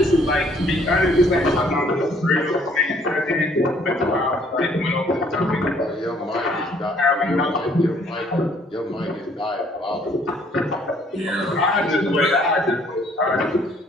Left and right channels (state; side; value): normal; both; correlation 0.62